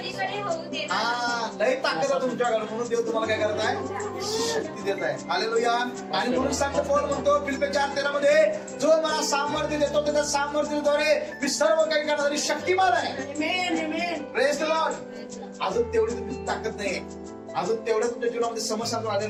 होऊ देत नाही. हा, लय ताकद आहे तुमच्याकडे, म्हणून देव तुम्हाला काय करत आहे, शक्ती देत आहे. हालेलुया. आणि म्हणून सांगतो पौल म्हणतो फिलिप्पी 4:13 मध्ये, जो मला सामर्थ्य देतो त्याच्या सामर्थ्याद्वारे मी सर्व काही करणारी शक्तिमान आहे. Praise the Lord. अजून तेवढी तुमची ताकद नाहीये, अजून तेवढ्या तुमच्या जीवनामध्ये समस्या आलेल्या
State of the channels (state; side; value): identical; both; correlation 1.00